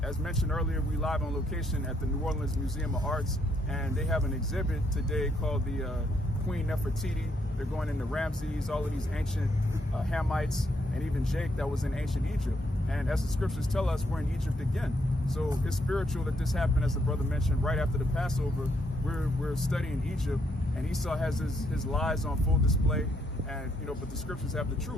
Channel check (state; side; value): normal; both; correlation 0.74